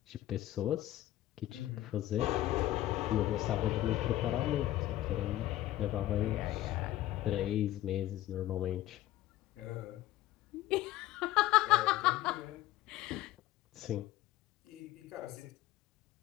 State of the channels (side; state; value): right; quieter; 14.9 dB